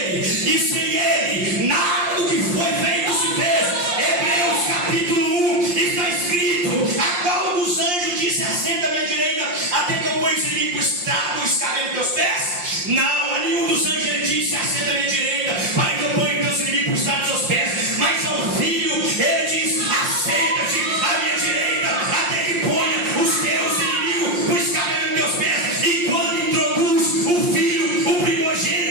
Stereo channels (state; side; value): late; left; 5.7 ms